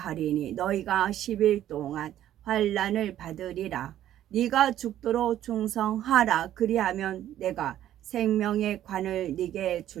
너희가 10일 동안 환난을 받으리라. 네가 죽도록 충성하라. 그리하면 내가 생명의 관을 네게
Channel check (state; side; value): quieter; left; 12.1 dB